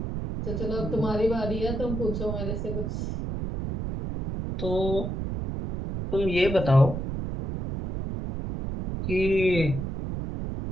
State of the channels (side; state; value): right; noise; rumble, 4 dB below the sound